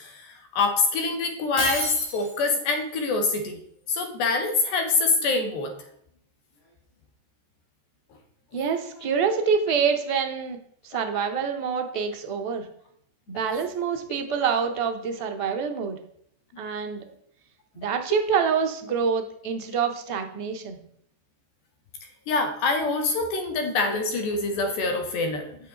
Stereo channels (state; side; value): late; right; 14 ms